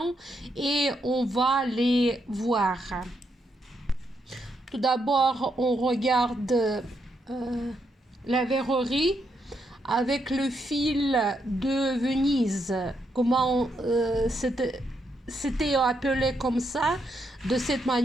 et on va les voir. Tout d'abord, on regarde la verrerie avec le fil de Venise. Comment c'était appelé comme ça, de cette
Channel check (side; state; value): both; normal; correlation 0.79